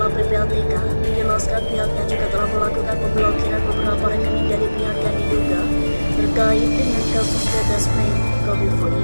PPATK menjelaskan pihaknya juga telah melakukan pemblokiran beberapa rekening dari pihak yang diduga terkait dengan kasus PT Aswanci Kominfo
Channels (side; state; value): both; inverted; correlation -1.00